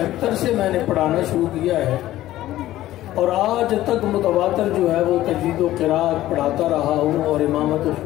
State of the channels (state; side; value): quieter; right; 14.7 dB